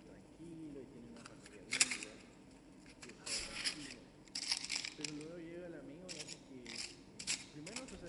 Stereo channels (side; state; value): both; identical; correlation 1.00